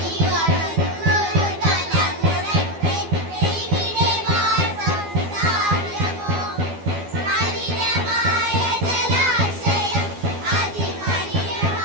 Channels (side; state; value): left; late; 12 ms